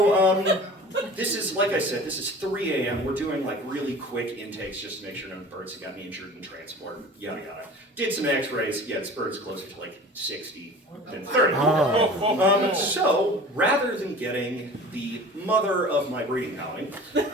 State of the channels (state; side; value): normal; both; correlation 0.40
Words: this is, like I said, this is 3 a.m. We're doing like really quick intakes just to make sure no birds have gotten injured in transport, yada yada. Did some x-rays, yeah, this bird's closer to like 60 than 30. So rather than getting the mother of my breeding colony,